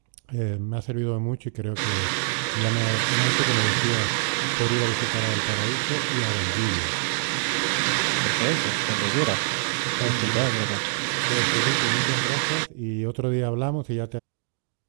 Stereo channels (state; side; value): silent; left; digital silence